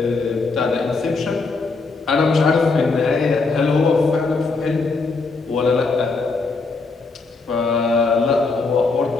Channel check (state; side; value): quieter; right; 4.0 dB